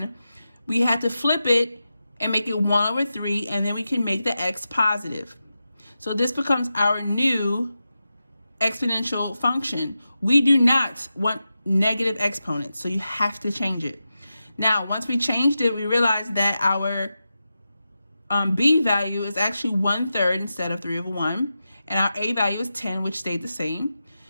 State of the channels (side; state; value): both; inverted; correlation -0.91